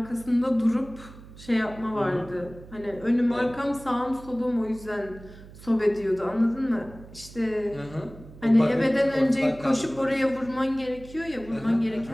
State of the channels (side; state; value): right; noise; hum, 18 dB below the sound